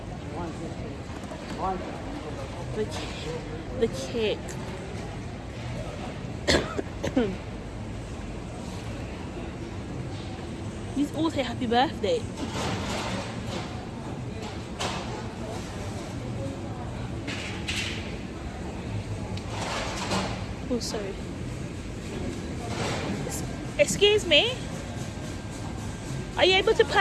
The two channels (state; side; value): identical; both; correlation 1.00